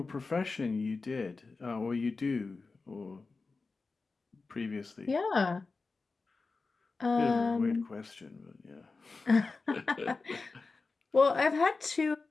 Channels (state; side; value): quieter; right; 4.0 dB